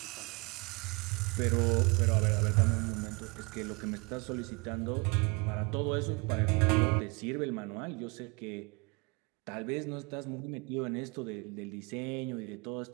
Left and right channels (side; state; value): left; quieter; 29.5 dB